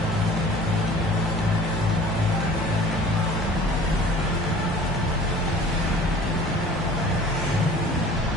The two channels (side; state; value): both; normal; correlation 0.47